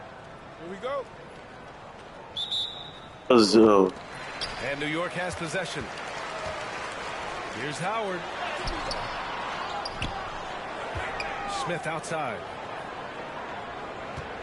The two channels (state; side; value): identical; both; correlation 1.00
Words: Here we go. And New York has possession. Here's Howard. Smith outside.